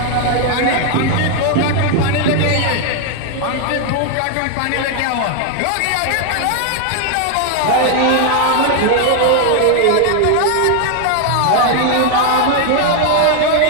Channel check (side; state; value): both; different; correlation 0.00